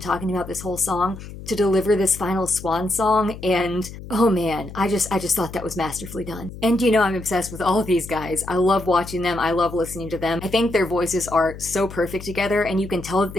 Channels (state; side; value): noise; left; hum, 13 dB below the sound